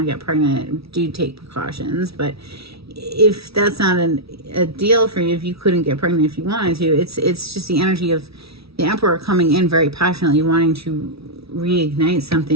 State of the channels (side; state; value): left; late; 0.76 ms